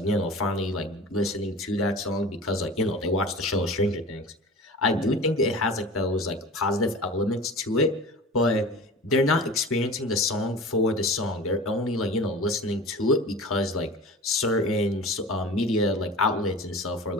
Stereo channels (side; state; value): both; normal; correlation 0.36